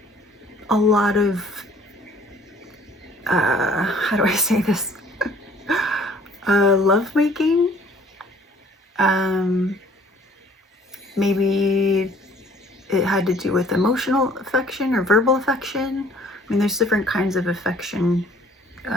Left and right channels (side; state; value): both; normal; correlation 0.56